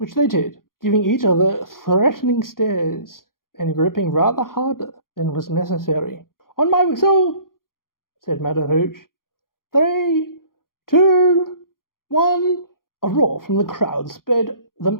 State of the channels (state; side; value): late; right; 0.91 ms